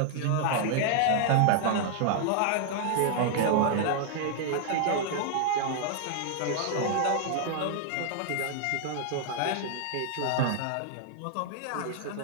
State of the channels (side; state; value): both; different; correlation -0.01